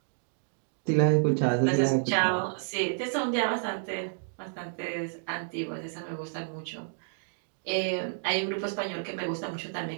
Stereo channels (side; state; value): left; silent; digital silence